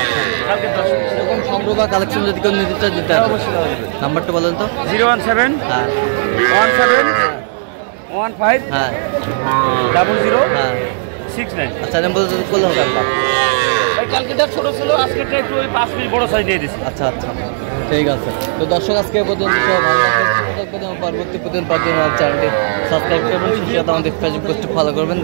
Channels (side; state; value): left; silent; digital silence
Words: এরকম সংগ্রহ বা কালেকশন যদি কেউ নিতে চায় দিতে হবে। নাম্বারটা বলেন তো। 017 হ্যাঁ 17 15 হ্যাঁ 00 হ্যাঁ 69। আচ্ছা, নাম্বার করলে হবে আপনার। কালকেটা ছোট ছিল, আজকেটা একটু ওই 5 পিস বড় সাইজ দিয়ে দিচ্ছি। আচ্ছা আচ্ছা, ঠিক আছে। তো দর্শক, আজকে পর্যন্ত ভালো থাকবেন এবং পরবর্তী প্রতিদিন পর্যন্ত আমার চ্যানেলটি সাবস্ক্রাইব করবেন। সেই সাথে আমাদের ফেসবুক পেজটি ফলো করবেন,